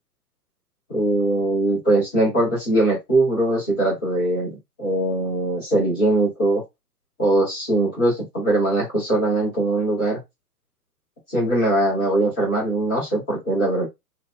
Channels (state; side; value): normal; both; correlation 0.59